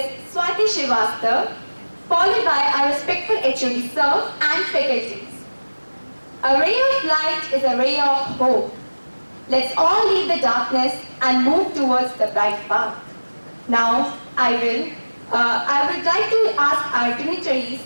Swati Srivastava, followed by our respectful HOD Sir and faculties. A ray of light is a ray of hope. Let's all leave the darkness and move towards the bright path. Now, I would like to ask our dignitaries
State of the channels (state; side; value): inverted; both; correlation -1.00